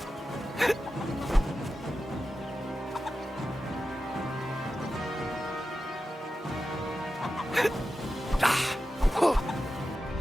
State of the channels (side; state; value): both; normal; correlation 0.92